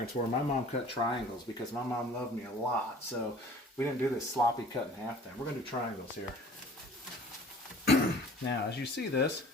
were. My mom cut triangles because my mom loved me a lot. So we didn't do this sloppy cut in half thing. We're gonna do triangles here. Now, as you see this,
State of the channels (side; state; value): both; normal; correlation 0.48